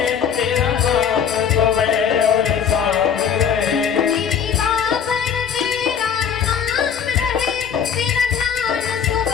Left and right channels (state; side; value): quieter; right; 7.7 dB